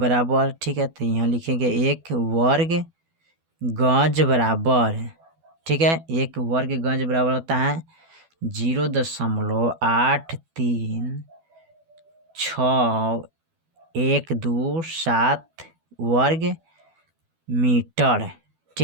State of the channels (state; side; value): late; left; 12 ms